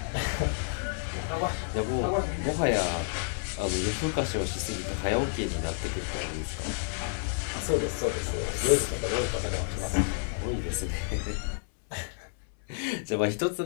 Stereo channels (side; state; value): right; silent; 58 dB below the other